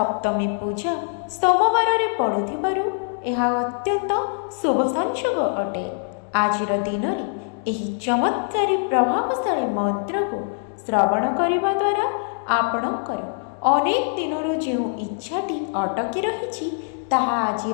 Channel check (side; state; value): right; silent; 63 dB below the other